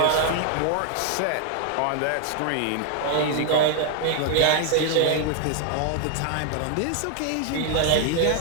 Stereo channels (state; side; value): different; both; correlation 0.00